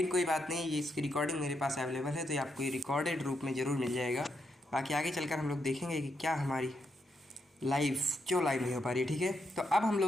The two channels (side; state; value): both; normal; correlation 0.81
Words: कोई बात नहीं, ये इसकी रिकॉर्डिंग मेरे पास अवेलेबल है, तो ये आपको ये रिकॉर्डेड रूप में ज़रूर मिल जाएगा। बाकी आगे चलकर हम लोग देखेंगे कि क्या हमारी लाइव क्यों लाइव नहीं हो पा रही है। ठीक है, तो अब हम